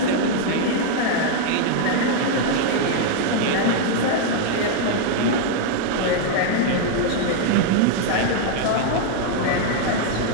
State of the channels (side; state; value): both; different; correlation 0.00